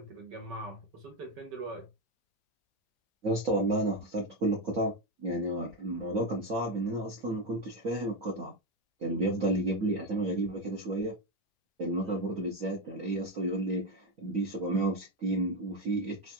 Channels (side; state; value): both; normal; correlation 0.11